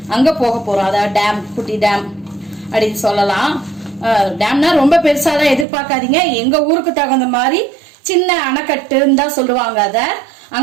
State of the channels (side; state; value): left; drops out; at 5.7 s